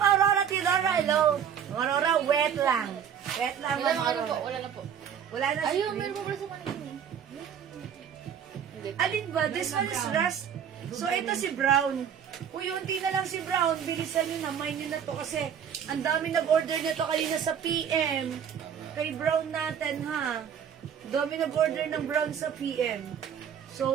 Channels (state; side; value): quieter; left; 8.3 dB